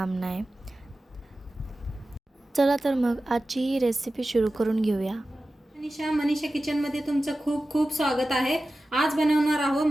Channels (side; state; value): both; normal; correlation 0.94